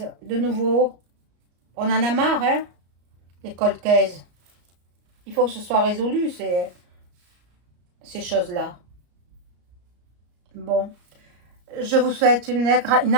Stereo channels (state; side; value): late; left; 34 ms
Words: de nouveau. On en a marre, hein, les cold cases. Il faut que ce soit résolu, ces choses-là. Bon, je vous souhaite une